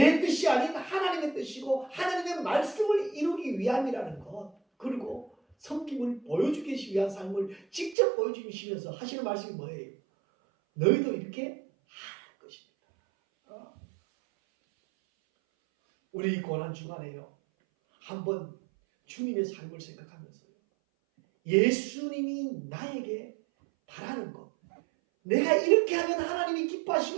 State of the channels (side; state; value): left; drops out; at 8.0 s